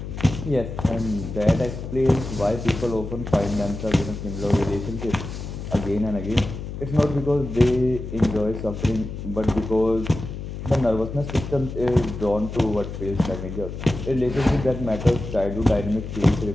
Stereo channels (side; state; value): left; noise; hum, 8 dB below the sound